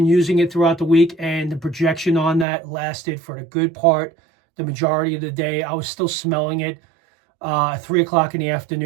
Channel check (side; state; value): left; drops out; at 2.5 s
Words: using it throughout the week, and the projection on that lasted for the good part, the majority of the day. I was still smelling it 3 o'clock in the